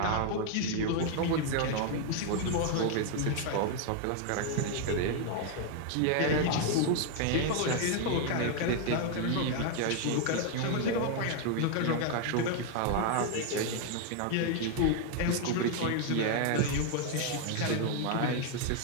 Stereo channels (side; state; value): both; different; correlation 0.00